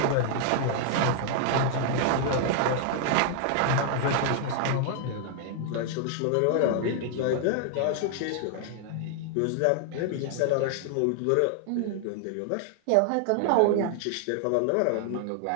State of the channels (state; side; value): different; both; correlation 0.00